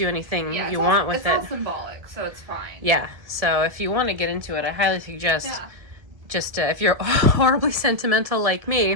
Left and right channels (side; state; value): left; late; 1.7 ms